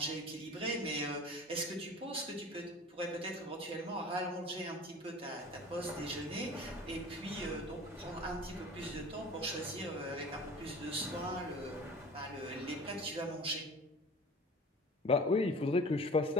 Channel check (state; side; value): normal; both; correlation 0.41